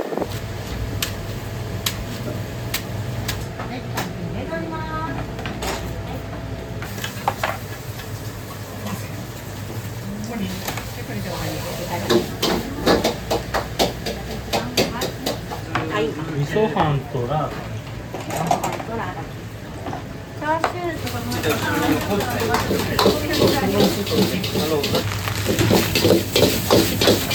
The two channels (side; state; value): both; identical; correlation 1.00